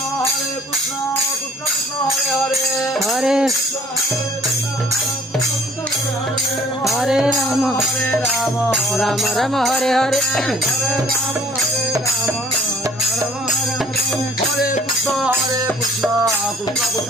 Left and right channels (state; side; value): normal; both; correlation 0.55